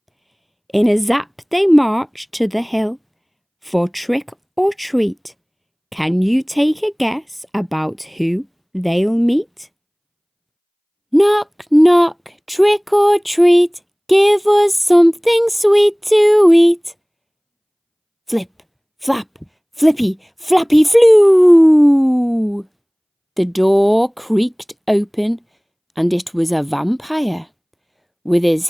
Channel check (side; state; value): both; identical; correlation 1.00